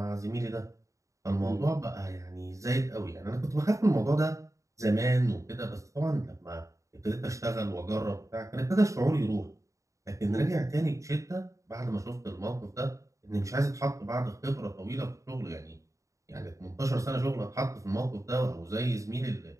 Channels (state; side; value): late; left; 0.15 ms